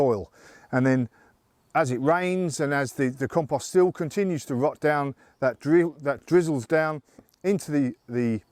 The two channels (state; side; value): identical; both; correlation 1.00